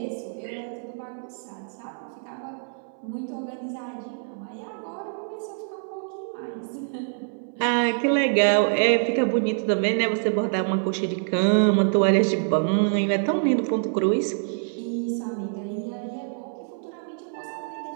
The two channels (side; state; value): left; silent; 61 dB below the other